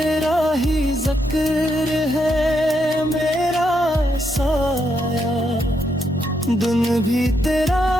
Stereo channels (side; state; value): both; normal; correlation 0.79